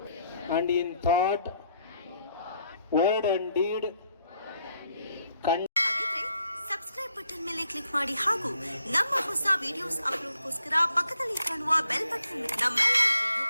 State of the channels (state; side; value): inverted; both; correlation -0.71